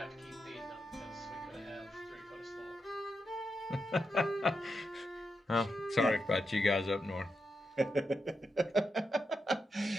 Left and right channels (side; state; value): both; normal; correlation 0.86